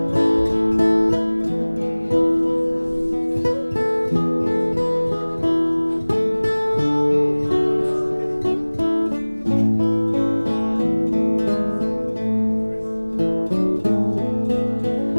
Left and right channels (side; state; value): both; inverted; correlation -1.00